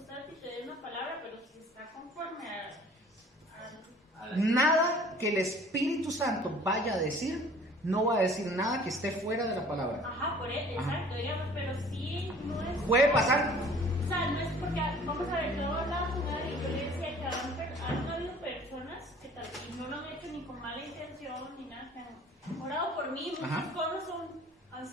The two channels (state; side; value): normal; both; correlation 0.51